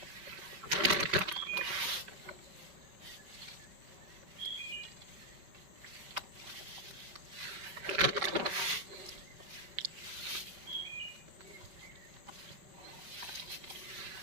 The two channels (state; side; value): late; left; 5.3 ms